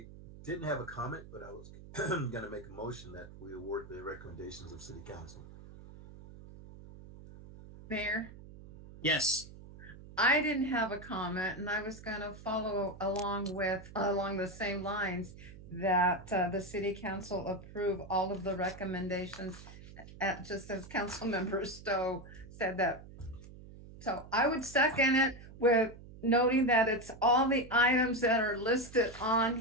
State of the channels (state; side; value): noise; right; hum, 17 dB below the sound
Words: didn't have a comment, but I was going to make a motion that we award the recommendations of City Council. Mayor, Yes. I didn't have a comment, and I was going to follow along the same lines that the city council approve all of the recommendations, just as Councilmember Stowe said that. So I would second it with noting that it's all the items that are listed on